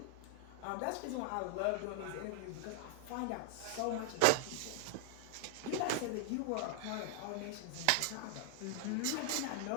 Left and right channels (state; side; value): different; both; correlation 0.00